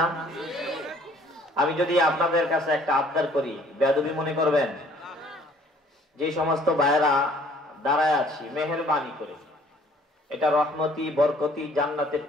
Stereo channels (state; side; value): normal; both; correlation 0.58